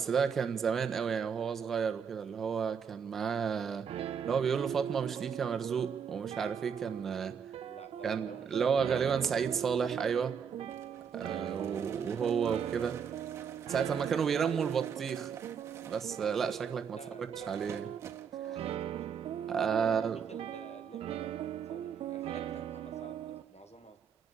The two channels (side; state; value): left; quieter; 6.9 dB